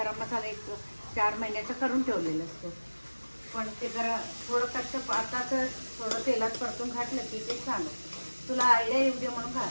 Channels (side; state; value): both; inverted; correlation -1.00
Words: मसाला 4 महिन्याचा करून ठेवलेलं असतो, पण ते जरा थोडं कच्चं आताच थोडं तेलात परतून घातलं की ते छान होतं. तुला आयडिया येऊ दे म्हणून